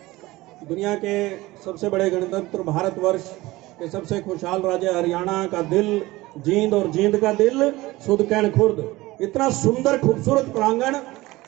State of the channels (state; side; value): quieter; left; 19.4 dB